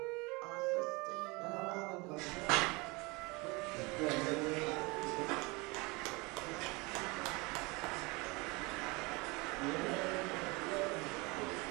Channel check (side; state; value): left; quieter; 26.1 dB